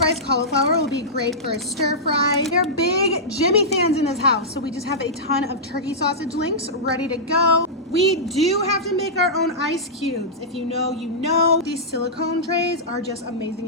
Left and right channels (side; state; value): both; normal; correlation -0.13